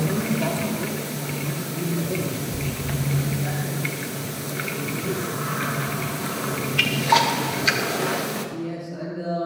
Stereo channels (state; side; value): identical; both; correlation 1.00